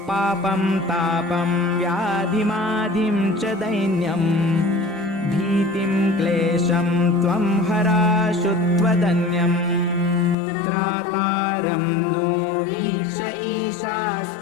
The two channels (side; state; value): right; drops out; at 10.4 s